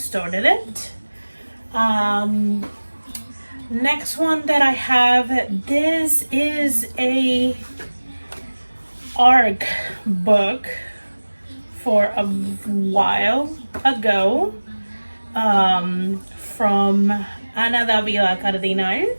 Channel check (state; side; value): inverted; both; correlation -1.00